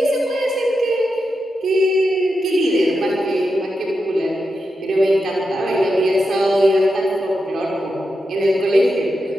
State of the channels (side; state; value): both; normal; correlation 0.88